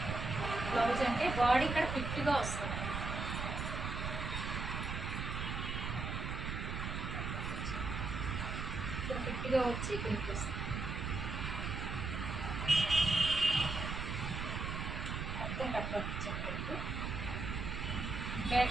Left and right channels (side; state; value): right; noise; rumble, 3 dB below the sound